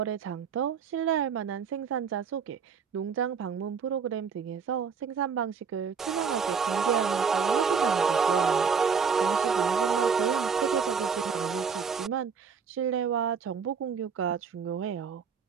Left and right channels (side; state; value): left; quieter; 6.2 dB